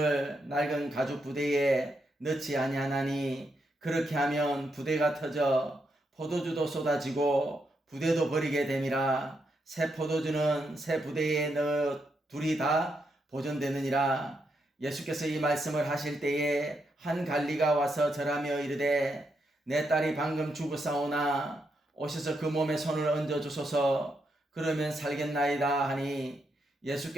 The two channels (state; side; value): normal; both; correlation 0.81